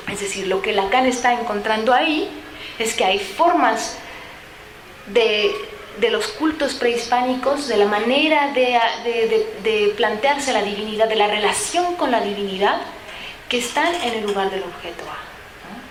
Es decir, lo que Lacan está encontrando ahí es que hay formas de los cultos prehispánicos, de la manera de plantearse la divinidad, de la relación con la divinidad, que están en el lugar del objeto A, ¿no?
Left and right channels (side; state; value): both; identical; correlation 1.00